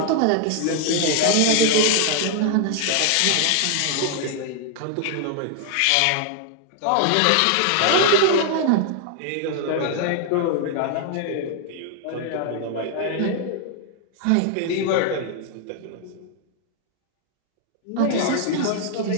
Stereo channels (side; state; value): both; different; correlation 0.00